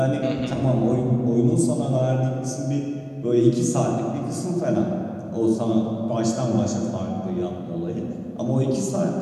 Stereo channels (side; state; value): both; identical; correlation 1.00